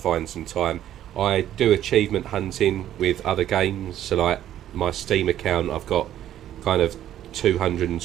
some time. I do achievement hunting with other games, so like my Steam account, I've got kind of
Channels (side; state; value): left; quieter; 11.7 dB